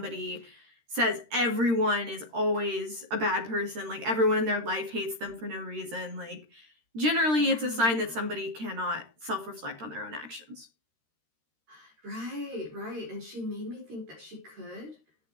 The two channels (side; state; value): left; late; 13 ms